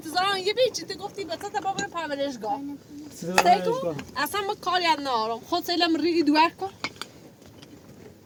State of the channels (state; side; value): identical; both; correlation 1.00